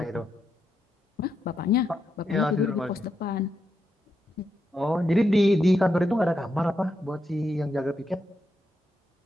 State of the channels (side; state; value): both; normal; correlation 0.83